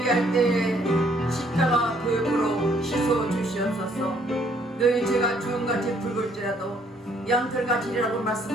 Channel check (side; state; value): both; normal; correlation 0.65